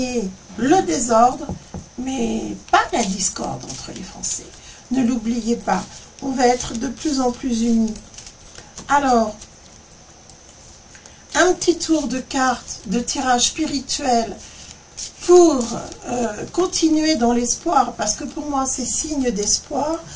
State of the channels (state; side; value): identical; both; correlation 1.00